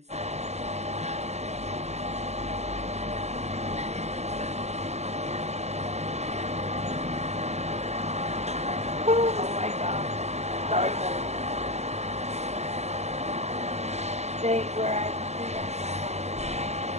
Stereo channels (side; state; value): left; late; 0.32 ms